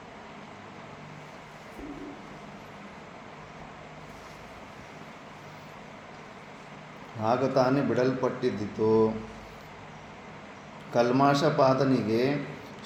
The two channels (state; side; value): identical; both; correlation 1.00